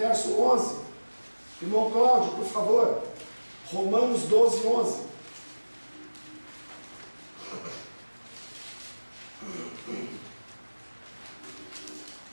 11. Irmão Cláudio, por favor. Romanos 12, 11.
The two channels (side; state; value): both; inverted; correlation -1.00